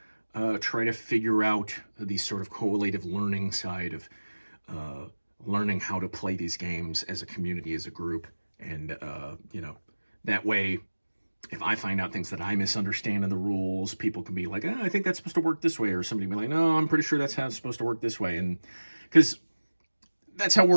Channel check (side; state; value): both; inverted; correlation -1.00